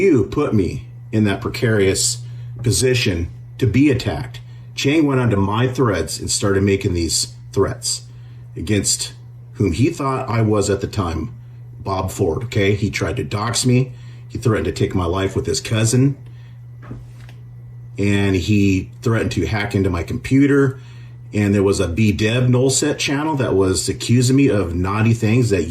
put me in that precarious position to be attacked. Chang went onto my threads and started making these threats against whom he thought I was at the time, Bob Ford, okay? He tried to dox me. He threatened to take my life with his cousin. And he threatened to hack into my computer. And there was a bdevnulset channel that was accusing me of naughty things that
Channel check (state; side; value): identical; both; correlation 1.00